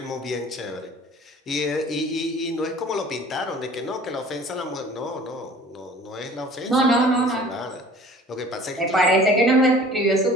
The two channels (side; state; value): both; normal; correlation 0.48